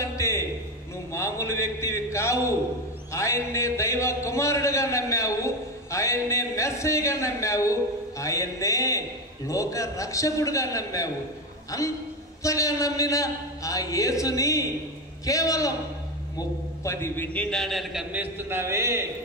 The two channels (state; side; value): normal; both; correlation 0.16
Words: అంటే నువ్వు మామూలు వ్యక్తివి కావు. ఆయన్నే దైవ కుమారుడుగా నమ్మావు, ఆయన్నే మెస్సయ్యగా నమ్మావు, ఆయన్నే లోక రక్షకుడుగా నమ్మావు. అంతగా నమ్మిన ఆ యేసుని కేవలం 30 వెండి నాణ్యాలకు అమ్మేస్తున్నావే.